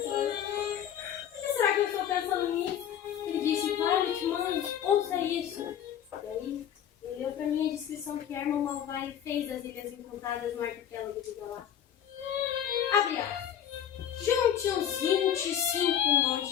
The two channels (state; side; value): quieter; right; 9.7 dB